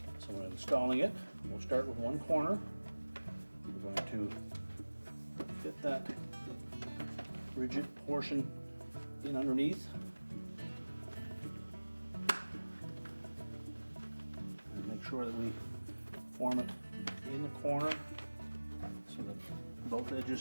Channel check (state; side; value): inverted; both; correlation -1.00